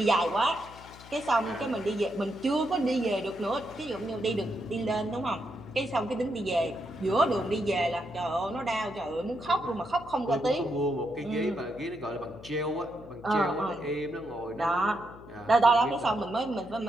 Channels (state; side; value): noise; left; hum, 19 dB below the sound